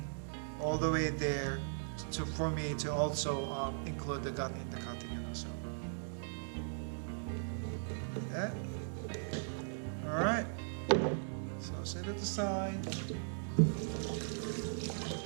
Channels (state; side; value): silent; left; digital silence